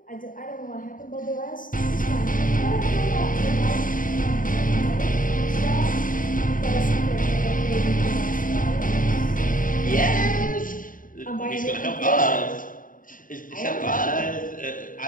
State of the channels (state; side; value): late; right; 0.39 ms